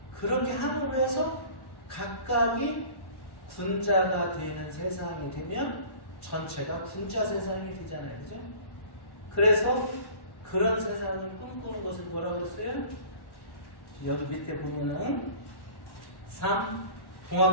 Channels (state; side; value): late; right; 1.1 ms